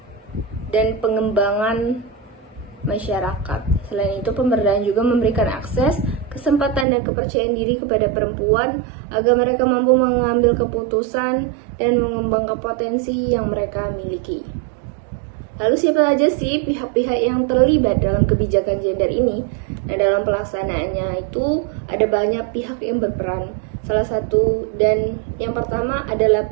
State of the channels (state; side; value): drops out; left; at 6.9 s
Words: dan pengembangan masyarakat. Selain itu, pemberdayaan juga memberikan akses, kesempatan, dan kepercayaan diri kepada perempuan agar mereka mampu mengambil keputusan dan mengembangkan potensi yang mereka miliki. Lalu siapa saja sih pihak-pihak yang terlibat dalam kebijakan gender ini? Nah, dalam pelaksanaannya itu ada banyak pihak yang berperan. Salah satu dan yang pertama adalah